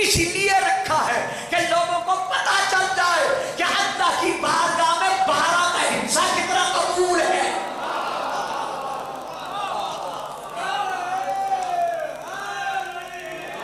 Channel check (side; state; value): both; identical; correlation 1.00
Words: اس لیے رکھا ہے کہ لوگوں کو پتہ چل جائے کہ اللہ کی بارگاہ میں 12 کا حصہ کتنا قبول ہے۔